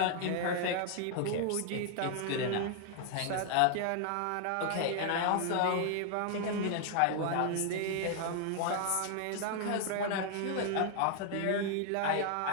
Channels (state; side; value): different; both; correlation 0.00